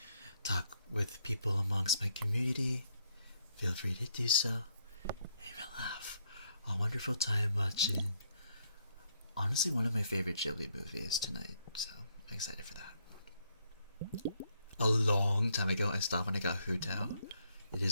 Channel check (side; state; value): both; inverted; correlation -0.73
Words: talk with people amongst my community, feel free to do so. And we'll have a wonderful time watching, honestly, one of my favorite Ghibli movies tonight. So I'm excited for that. A long time ago, I stopped when I got Hutao. It